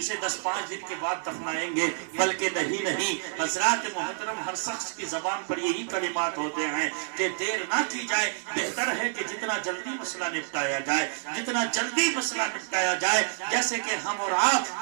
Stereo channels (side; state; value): left; silent; 59 dB below the other